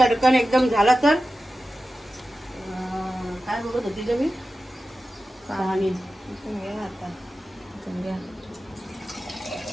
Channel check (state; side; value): normal; both; correlation 0.93